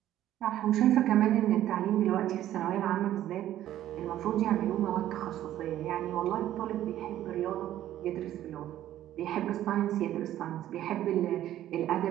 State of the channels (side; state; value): left; quieter; 12.7 dB